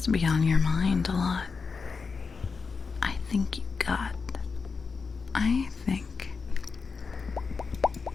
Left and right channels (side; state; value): right; quieter; 5.0 dB